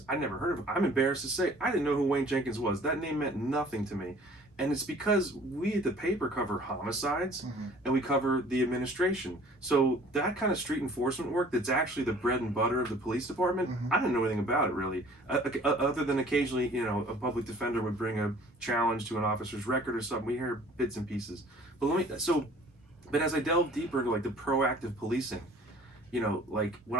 I never heard of him. I'm embarrassed to say, I didn't know who Wayne Jenkins was. That name meant nothing to me. And it's because we at the paper cover homicides and we cover the administration. So that kind of street enforcement work that's actually the bread and butter of the police department, I didn't know anything about it really. Other than occasionally, you know, a public defender would bring a challenge to an officer's record or something. We hear bits and pieces. But as I delve deeper into like the proactive policing, you know, like when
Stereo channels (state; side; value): normal; both; correlation 0.51